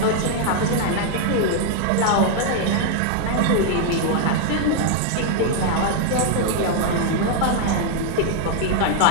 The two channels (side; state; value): both; different; correlation 0.00